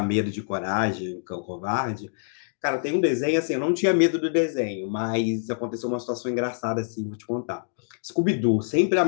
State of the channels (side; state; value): right; silent; digital silence